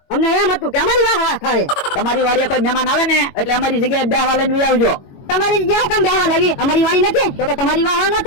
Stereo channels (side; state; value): right; late; 22 ms